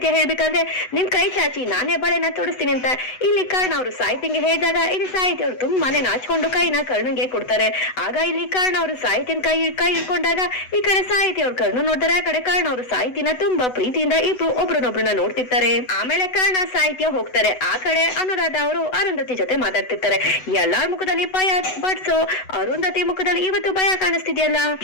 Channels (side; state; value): right; late; 8.0 ms